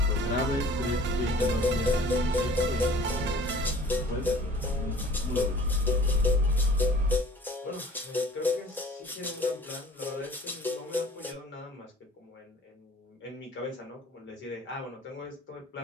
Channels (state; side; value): normal; both; correlation 0.50